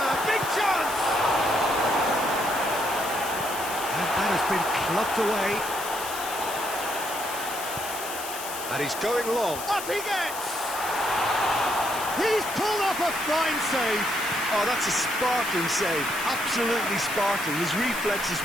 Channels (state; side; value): noise; left; hiss, 9 dB below the sound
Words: Big chance! And that has been clubbed away. And he's going long. Up he gets! He's pulled off a fine save. Oh, that's a sparkling save. Absolutely sparkling. His reflexes